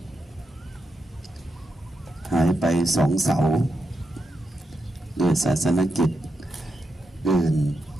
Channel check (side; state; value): both; normal; correlation 0.86